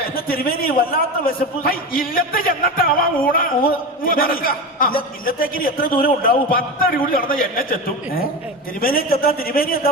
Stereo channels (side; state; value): both; normal; correlation 0.23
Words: തിരുമേനി വല്ലാത്ത വിശപ്പ്. ഇല്ലത്തെ ചെന്നിട്ടാവാ ഊണ ഇല്ലത്തേക്ക് എത്ര ദൂരം ഉണ്ടാവും? 10 അടി കൂടി നടന്ന എന്നെ ചെത്തും. തിരുമേനി ചെത്താൻ തിരുമേനി എന്താ